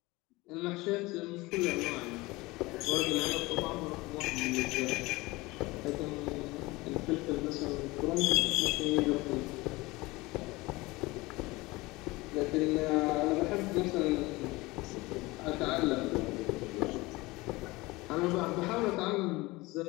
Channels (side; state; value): right; quieter; 21.7 dB